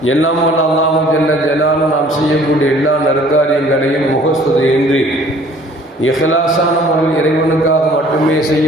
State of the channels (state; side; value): normal; both; correlation 0.54